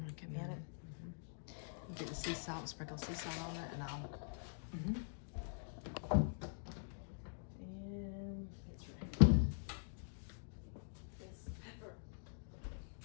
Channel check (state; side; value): silent; right; digital silence